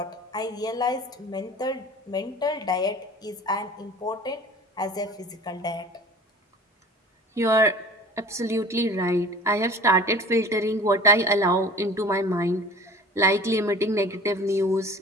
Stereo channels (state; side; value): normal; both; correlation 0.42